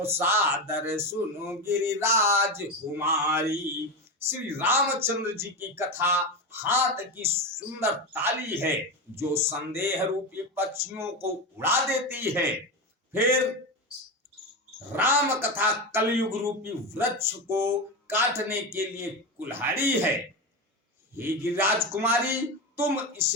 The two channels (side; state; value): both; normal; correlation 0.18